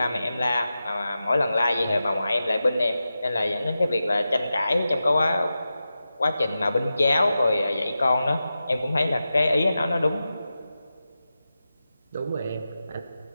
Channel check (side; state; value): both; inverted; correlation -0.92